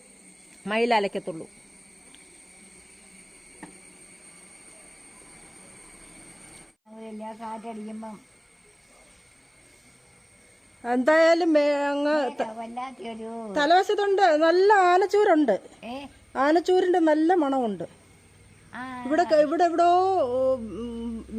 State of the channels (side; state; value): both; identical; correlation 1.00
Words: മയിൽ അലക്കത്തുള്ളൂ. കാറ്റടിക്കുമ്പം എന്തായാലും അങ്ങ് തലവശത്തുണ്ട് നല്ല ആനച്ചൂരുണ്ട്. ആനച്ചൂരിന്റെ നല്ല മണമുണ്ട്. ഇവിടെ എവിടോ